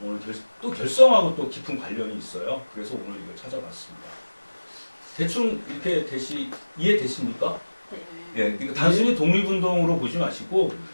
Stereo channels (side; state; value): both; inverted; correlation -1.00